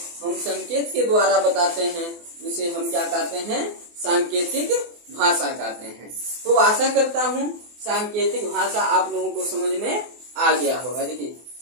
हम संकेत के द्वारा बताते हैं उसे हम क्या कहते हैं, सांकेतिक भाषा कहते हैं। तो आशा करता हूँ सांकेतिक भाषा आप लोगों को समझ में आ गया होगा। देखिए,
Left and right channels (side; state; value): left; late; 24 ms